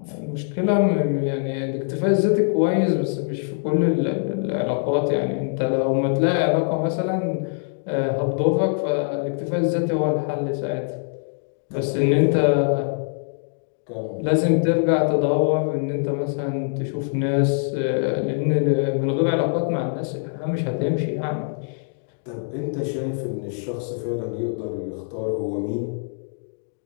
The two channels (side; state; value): right; silent; digital silence